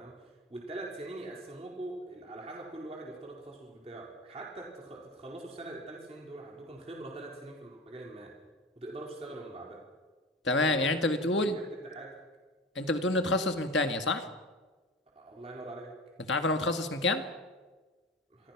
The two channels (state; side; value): normal; both; correlation 0.30